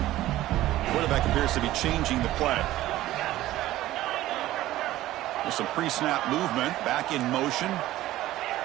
Quarterback appears to be changing the play. With some pre-snap movement, back in motion.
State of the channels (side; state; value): left; quieter; 15.3 dB